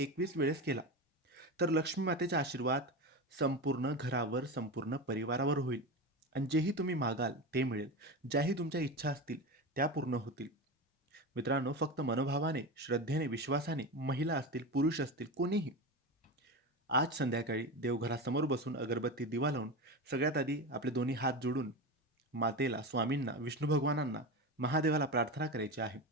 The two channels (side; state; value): both; normal; correlation 0.22